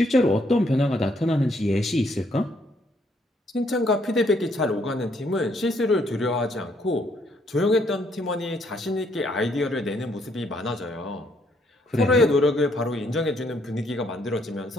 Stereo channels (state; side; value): normal; both; correlation 0.70